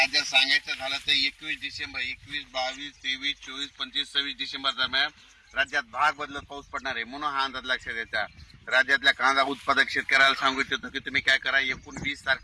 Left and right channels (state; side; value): identical; both; correlation 1.00